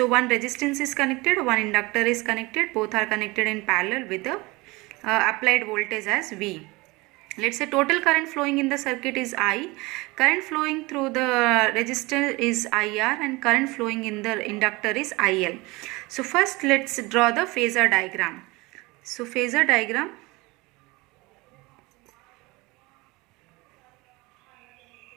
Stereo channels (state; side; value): quieter; left; 23.4 dB